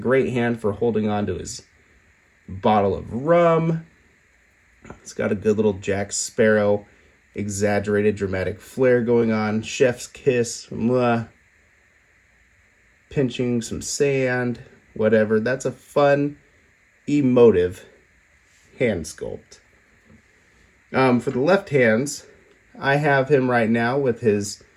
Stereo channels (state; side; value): identical; both; correlation 1.00